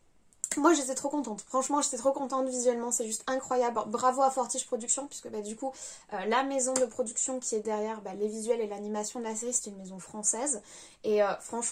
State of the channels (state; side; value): identical; both; correlation 1.00